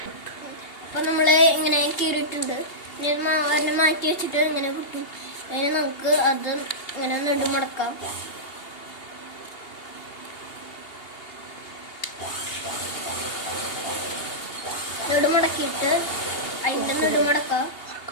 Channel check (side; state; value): right; late; 2.8 ms